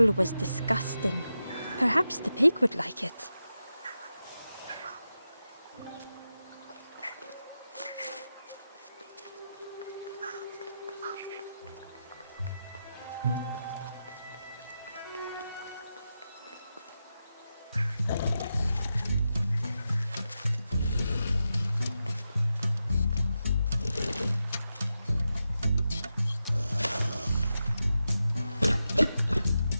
was disgusting. Perhaps the pig would like it.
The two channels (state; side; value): inverted; both; correlation -0.89